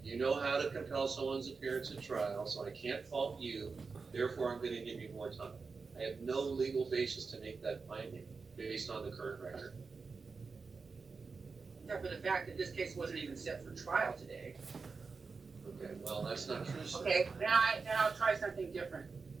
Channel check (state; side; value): quieter; left; 4.7 dB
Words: You know how to compel someone's appearance at trial, so I can't fault you. Therefore, I'm going to give you more time. I have no legal basis to make that finding based on the current record. Except for the fact that this case wasn't even set for trial today. Okay, well, that's not true, sir. Okay, then I'll try something different.